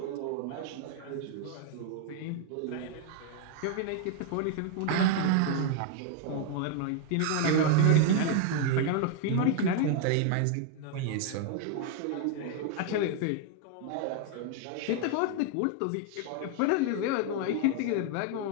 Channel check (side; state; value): both; different; correlation 0.00